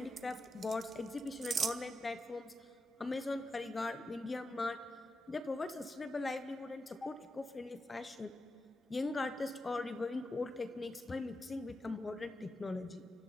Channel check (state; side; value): normal; both; correlation 0.88